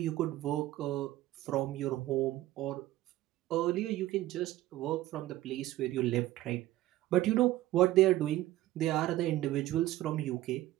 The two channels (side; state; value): left; quieter; 15.6 dB